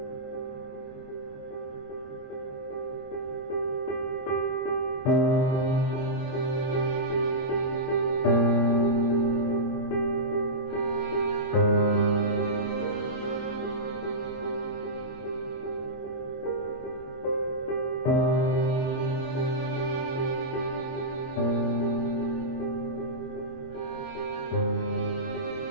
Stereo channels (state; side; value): late; right; 22 ms